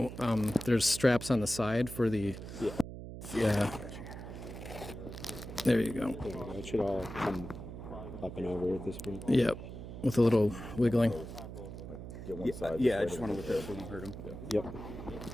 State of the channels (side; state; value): right; noise; hum, 10 dB below the sound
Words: on. There's straps on the side for the. Yeah. There you go. There we go. It should all come up and over at this point. Yep. With a little wiggling. Get one side. Yeah, I just want to look at it so we don't hurt him. Yep.